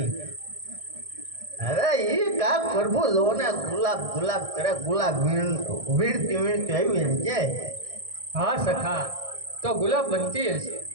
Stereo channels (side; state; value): left; late; 1.6 ms